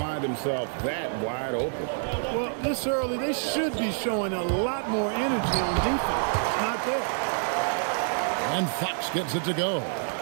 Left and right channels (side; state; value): left; silent; digital silence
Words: himself that wide open. Well, this early, they should be showing a lot more energy on defense. It's not there. And Fox gets it to go.